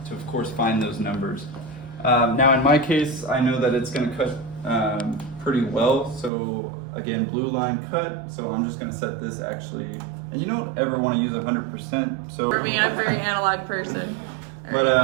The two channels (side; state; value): left; drops out; at 6.3 s